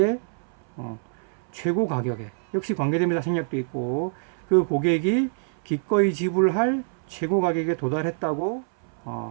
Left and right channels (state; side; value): silent; left; 60 dB below the other